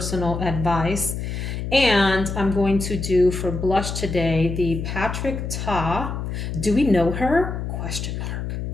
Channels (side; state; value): left; noise; hum, 4 dB below the sound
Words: advice. And I'm going to do for blush today the Patrick Ta. Do we know her? Question mark.